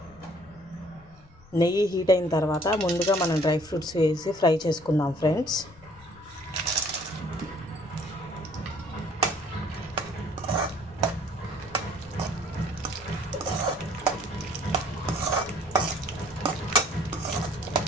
అయిన తర్వాత ముందుగా మనం డ్రై ఫ్రూట్స్ వేసి ఫ్రై చేసుకుందాం ఫ్రెండ్స్.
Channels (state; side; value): noise; left; rumble, 24 dB below the sound